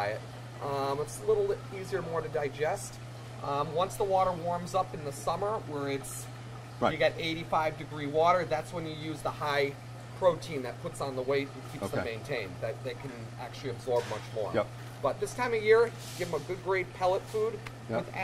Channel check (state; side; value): identical; both; correlation 1.00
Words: It's a little easier, more to digest. Once the water warms up in the summer, where Right. you get 85-degree water, that's when you use the high protein that puts on the weight and keeps them Okay. maintained. That they can actually absorb much more. Yep. But this time of year, give them a good grade pellet food. Yep. With